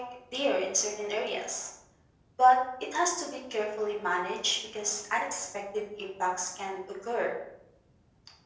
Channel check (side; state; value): both; identical; correlation 1.00